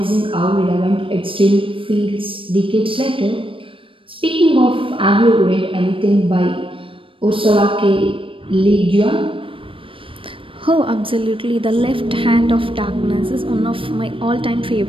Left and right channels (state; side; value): late; left; 0.25 ms